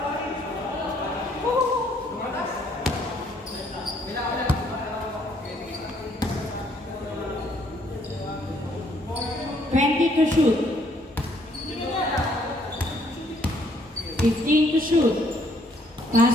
To shoot. 15 to shoot.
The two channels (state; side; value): normal; both; correlation 0.66